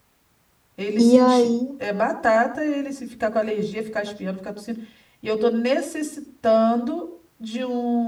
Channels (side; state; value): both; identical; correlation 1.00